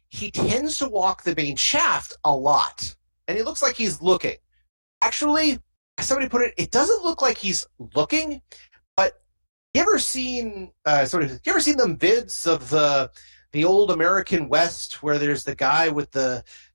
he tends to walk the main shaft a lot. And he looks like he's looking. Actually, as somebody put it, it doesn't look like he's looking, but you ever seen them vids of the old American West where there's the guy with the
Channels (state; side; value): inverted; both; correlation -1.00